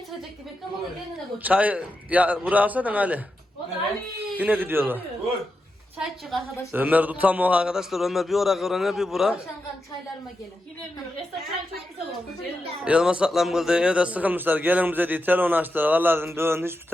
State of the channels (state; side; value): normal; both; correlation 0.88